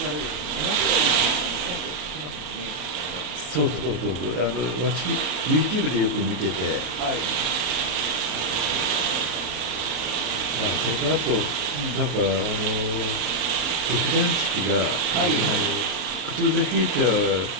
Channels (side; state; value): left; late; 34 ms